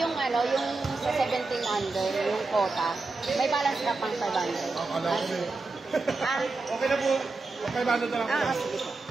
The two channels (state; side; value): quieter; left; 3.6 dB